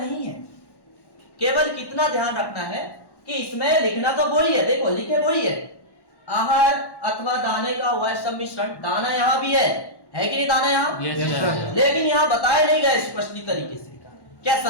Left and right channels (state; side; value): late; right; 1.1 ms